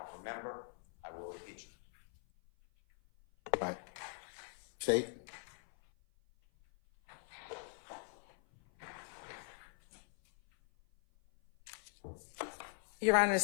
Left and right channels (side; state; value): right; silent; 50 dB below the other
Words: remember, I will impeach him. Right. State? Your Honor, the